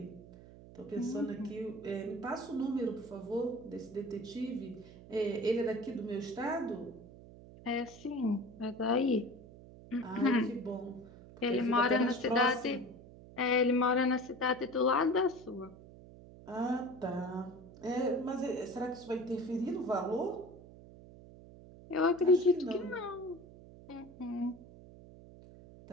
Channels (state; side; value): noise; right; hum, 19 dB below the sound